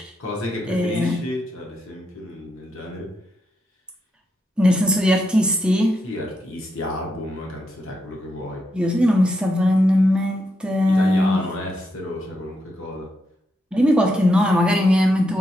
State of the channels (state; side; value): normal; both; correlation 0.82